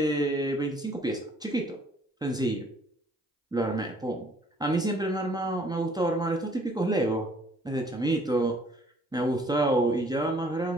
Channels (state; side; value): normal; both; correlation 0.60